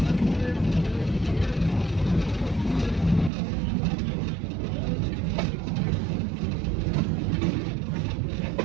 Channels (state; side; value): drops out; left; at 3.3 s